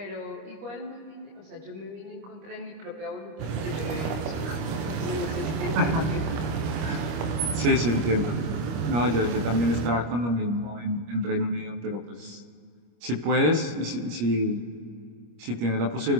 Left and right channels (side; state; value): left; late; 25 ms